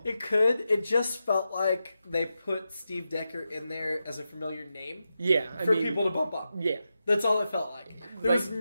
It could. It just felt like they put Steve Decker in there as a familiar name Yeah, for people to bump up. Yeah, That's all it felt like. There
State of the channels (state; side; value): inverted; both; correlation -0.89